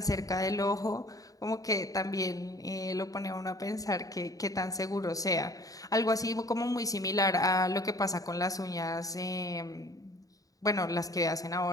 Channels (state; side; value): late; right; 0.17 ms